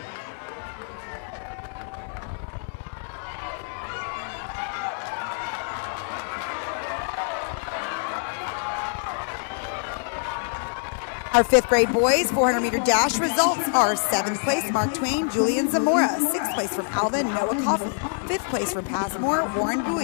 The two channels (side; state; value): right; silent; digital silence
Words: Our 5th grade boys 400-meter dash results are 7th place, Mark Twain, Julian Zamora. 6th place from Alvin, Noah Coffey. 5th place from Passmore, Warren